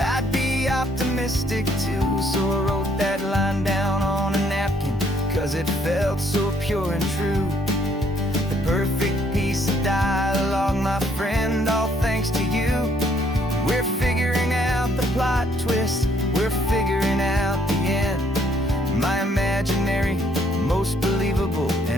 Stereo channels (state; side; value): normal; both; correlation 0.66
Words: be optimistic too. So I wrote that line down on a napkin, 'cause it felt so pure and true. The perfect piece of dialogue, my friend, all thanks to you. We're figuring out the plot twist, we're figuring out the end. My imaginary, most believable